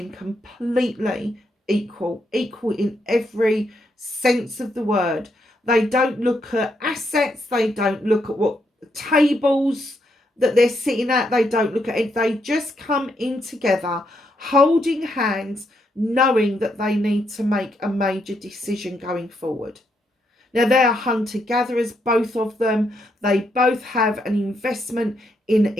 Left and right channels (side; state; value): both; normal; correlation 0.78